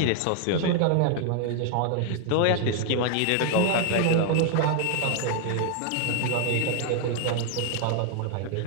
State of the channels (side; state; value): both; different; correlation 0.00